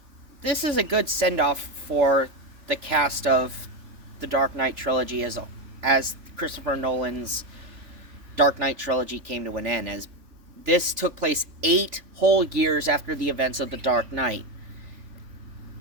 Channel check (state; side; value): late; left; 3.5 ms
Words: this is a good send-off for the cast of the Dark Knight trilogy as Christopher Nolan's Dark Knight trilogy came to an end, as this took place 8 whole years after the events of The Dark Knight.